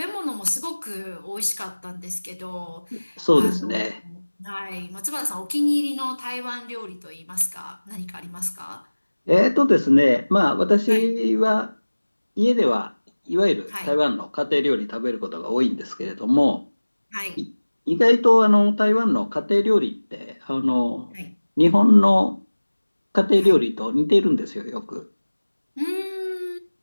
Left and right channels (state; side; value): inverted; both; correlation -1.00